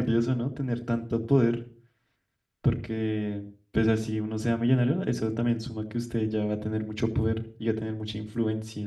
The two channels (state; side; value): identical; both; correlation 1.00